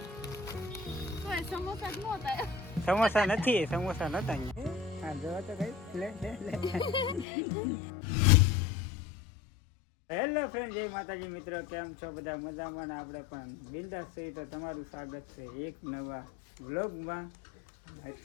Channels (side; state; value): right; drops out; at 7.2 s